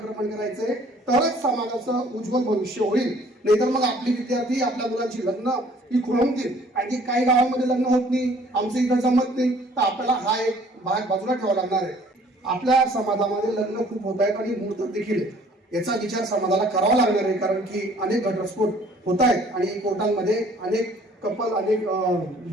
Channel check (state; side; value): normal; both; correlation 0.56